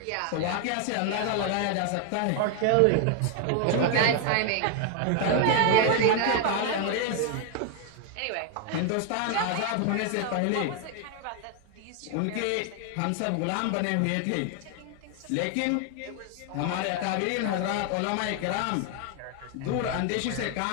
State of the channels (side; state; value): both; different; correlation 0.00